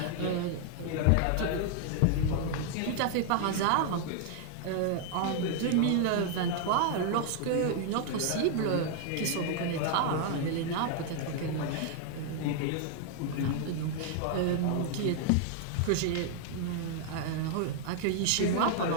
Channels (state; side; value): different; both; correlation 0.00